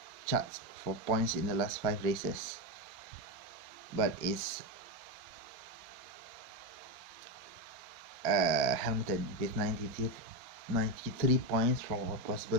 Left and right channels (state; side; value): late; left; 4.4 ms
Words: charts for points in the last 5 races, but it's Hamilton with 93 points from a